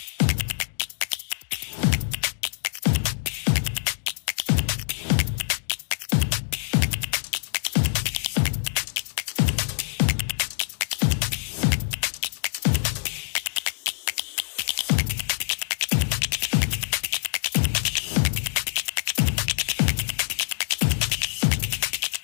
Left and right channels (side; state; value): right; silent; digital silence